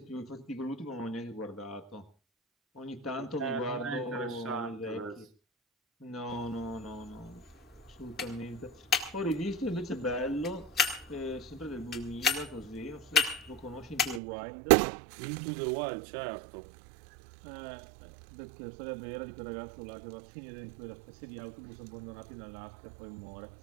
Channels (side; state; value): left; drops out; at 14.2 s